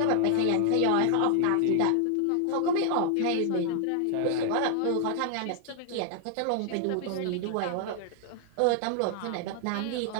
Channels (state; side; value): different; both; correlation 0.00